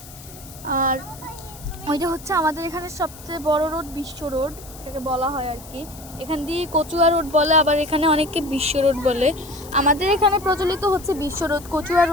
আর ওইটা হচ্ছে আমাদের এখানে সবচেয়ে বড় রোড, বিশ্ব রোড এটাকে বলা হয় আর কি। এখান দিয়ে কচুয়া রোড বলে, আবার এখানে অনেকে বিশ্ব রোড বলে। আমাদের এখানে প্রচলিত হচ্ছে বিশ্ব রোড, কচুয়া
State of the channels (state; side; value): noise; left; hiss, 18 dB below the sound